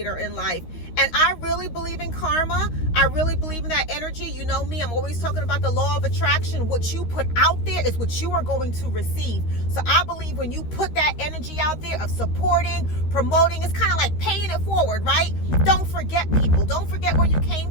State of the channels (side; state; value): right; late; 13 ms